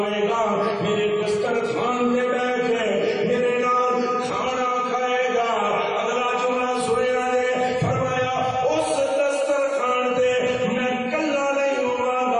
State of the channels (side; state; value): both; identical; correlation 1.00